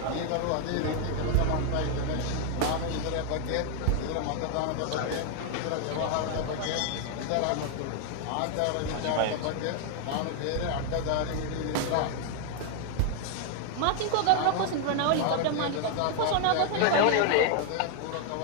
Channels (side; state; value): both; different; correlation 0.00